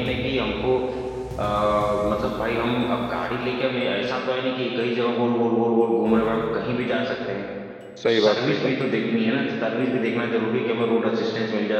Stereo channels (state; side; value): identical; both; correlation 1.00